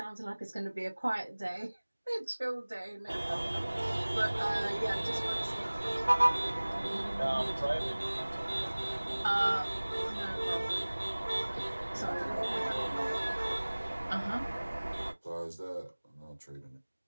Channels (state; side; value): inverted; both; correlation -1.00